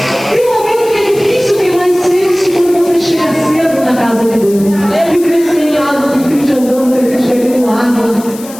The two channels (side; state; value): left; noise; hiss, 17 dB below the sound